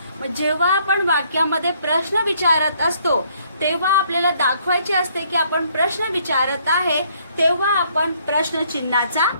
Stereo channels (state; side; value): inverted; both; correlation -0.66